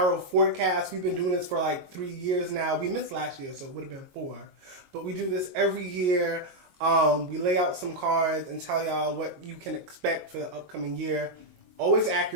forecast. We've been doing this for like 3 years now. We missed last year, so it would have been 4. But we do this every year. We lay out some cards and tell y'all what you can expect for the upcoming year. Always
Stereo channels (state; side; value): late; left; 22 ms